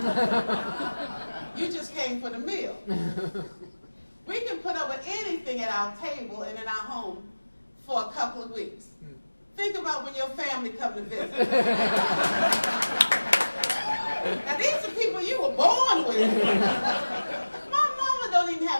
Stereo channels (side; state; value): both; inverted; correlation -1.00